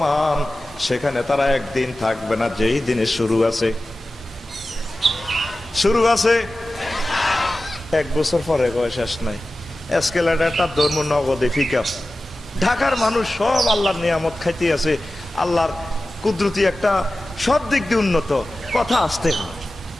সেখানে তারা একদিন থাকবে না, যেই দিনে শুরু আছে, শুরু আছে 1 বছর পরে কয় শেষ নাই। এসকেলেটারটা ধর্ম নগদে ফিকা। ঢাকার মানুষ সব আল্লাহর নিয়ামত খাইতে আছে, আল্লাহর কুদরতি একটা সব দিক দিয়ে উন্নত। কথা আসতে হয়,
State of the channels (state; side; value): normal; both; correlation 0.95